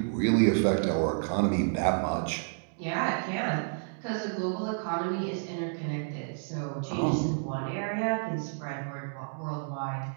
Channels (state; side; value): silent; left; digital silence